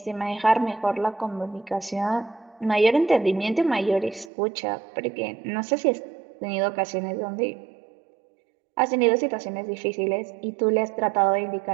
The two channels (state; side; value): drops out; left; at 4.3 s